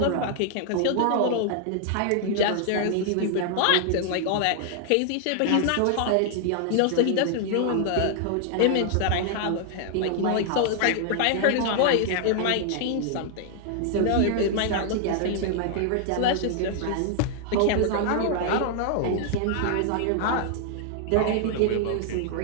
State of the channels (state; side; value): different; both; correlation 0.00